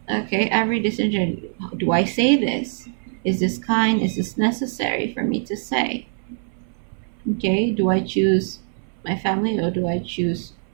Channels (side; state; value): left; silent; 60 dB below the other